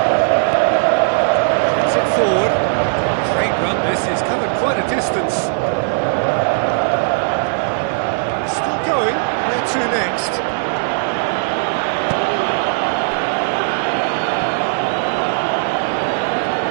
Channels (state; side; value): silent; left; 64 dB below the other